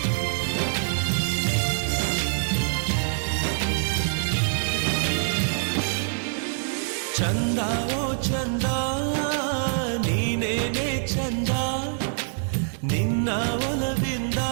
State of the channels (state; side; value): silent; left; digital silence